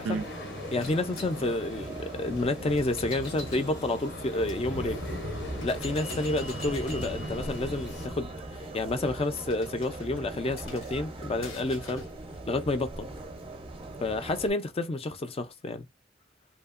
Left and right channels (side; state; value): both; normal; correlation 0.54